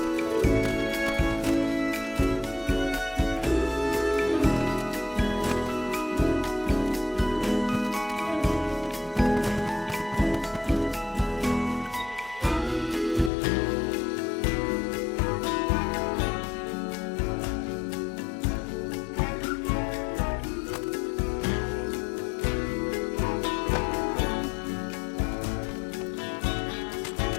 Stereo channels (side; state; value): right; drops out; at 13.3 s